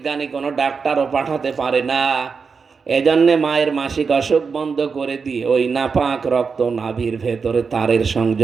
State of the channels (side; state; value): left; quieter; 5.3 dB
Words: কোনো ডাক্তারও পাঠাতে পারে না। এজন্যে মায়ের মাসিক অসুখ বন্ধ করে দিয়ে ওই নাপাক রক্ত নাভির ভেতরে তারের